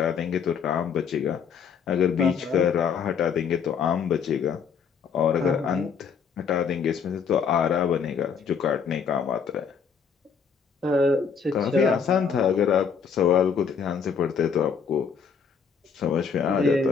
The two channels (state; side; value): quieter; right; 6.5 dB